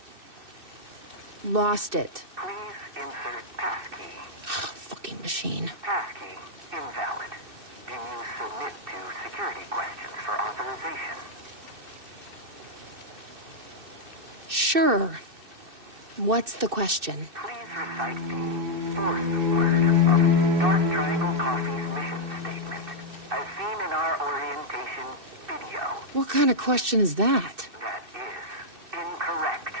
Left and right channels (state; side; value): late; left; 2.6 ms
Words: lost it. Please insert passkey. Fucking machine. Passkey invalid. Do you submit to security questions for authorization? Sure. What's the question? Please recite the fourth word of Dark Triangle Coffee's mission statement, as seen in our orientation video. What kind of question is that? That is incorrect.